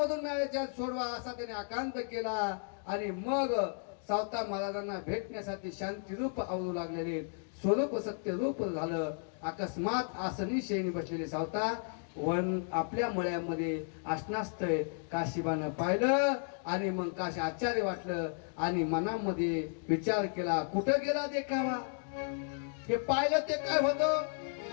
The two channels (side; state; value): right; silent; 55 dB below the other